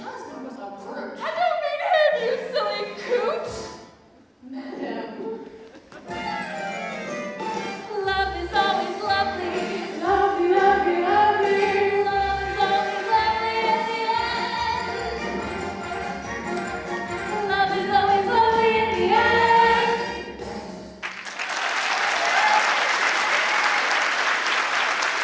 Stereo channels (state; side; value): identical; both; correlation 1.00